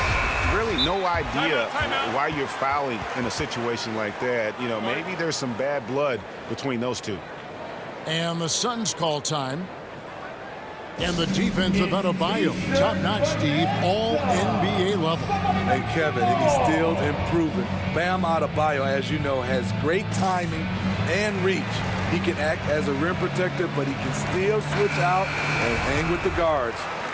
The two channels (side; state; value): both; identical; correlation 1.00